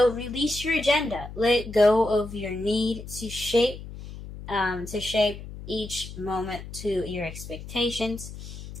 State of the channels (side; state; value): left; noise; hum, 12 dB below the sound